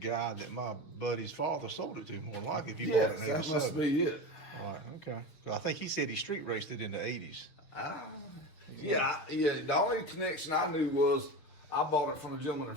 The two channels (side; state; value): right; late; 6.5 ms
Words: that my buddy's father sold it to, more than likely, if you Yes, bought it in that must 87. be it. Right, okay. So I think he said he street raced it in the 80s. Yeah. The only connection I knew was I bought it from a gentleman in